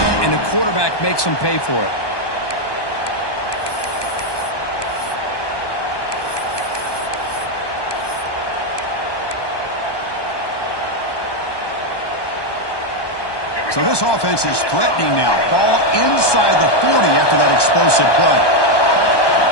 and the quarterback makes them pay for it. So this offense is threatening now. Ball inside the 40 after that explosive play.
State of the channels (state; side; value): late; right; 1.2 ms